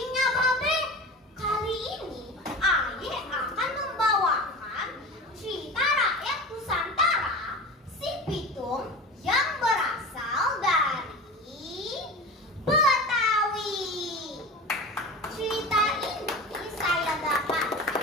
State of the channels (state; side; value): normal; both; correlation 0.32